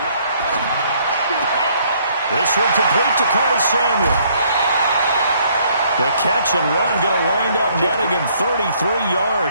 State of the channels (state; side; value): inverted; both; correlation -0.65